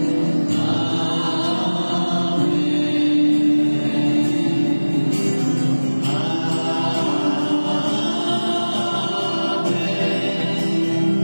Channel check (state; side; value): inverted; both; correlation -1.00